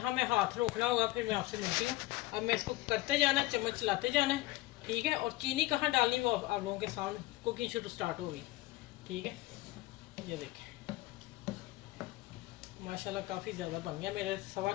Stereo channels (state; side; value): quieter; right; 18.9 dB